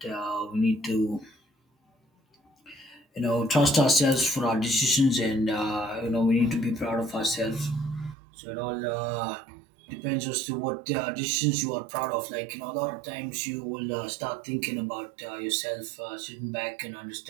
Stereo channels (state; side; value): drops out; left; at 8.2 s